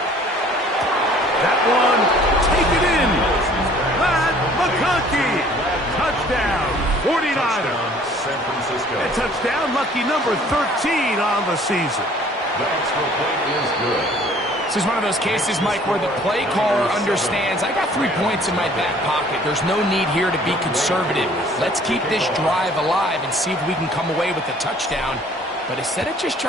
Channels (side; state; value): both; normal; correlation 0.54